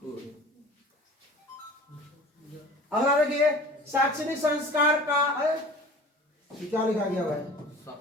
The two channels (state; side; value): normal; both; correlation 0.42